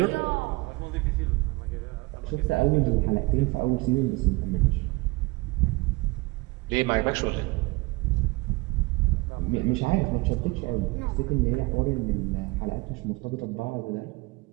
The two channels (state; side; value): quieter; left; 24.1 dB